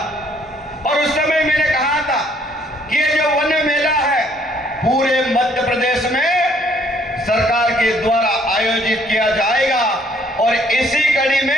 और उस समय मैंने कहा था कि ये जो वन मेला है पूरे मध्य प्रदेश में सरकार के द्वारा आयोजित किया जाएगा और इसी कड़ी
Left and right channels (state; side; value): normal; both; correlation 0.64